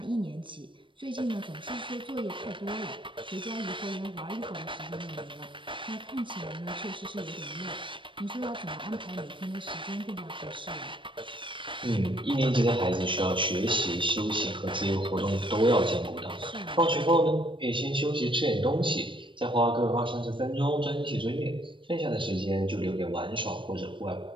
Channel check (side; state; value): left; late; 0.24 ms